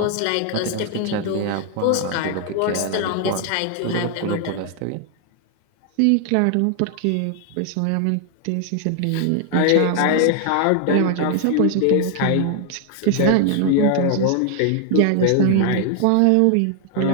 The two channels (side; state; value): both; different; correlation 0.00